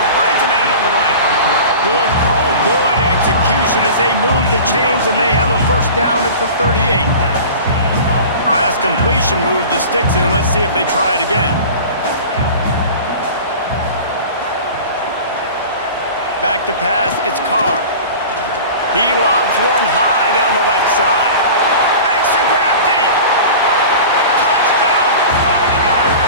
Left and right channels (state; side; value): inverted; both; correlation -0.37